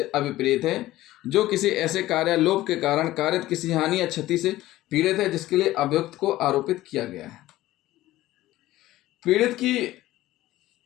अभिप्रेत है जो किसी ऐसे कार्यालोप के कारण कारित किसी हानि या क्षति से पीड़ित है जिसके लिए अभियुक्त को आरोपित किया गया है। पीड़ित की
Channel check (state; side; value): quieter; right; 16.0 dB